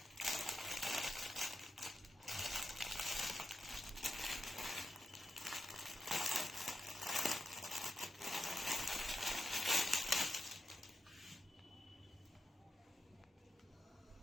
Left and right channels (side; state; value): both; normal; correlation 0.87